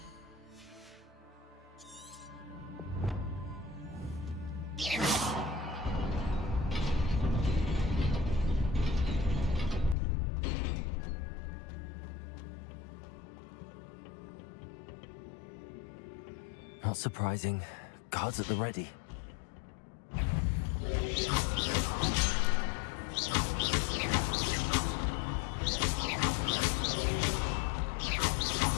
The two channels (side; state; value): right; drops out; at 10.0 s